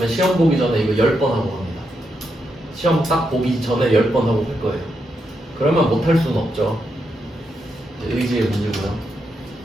시험 보기 전에 이거 10번 하고 갑니다. 시험 딱 보기 전에 10번 하고 할 거예요. 그러면 못할 수는 없죠. 의지의 문제고요.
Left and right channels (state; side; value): normal; both; correlation 0.83